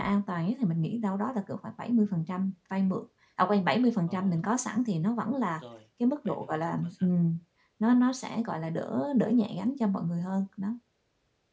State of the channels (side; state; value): both; identical; correlation 1.00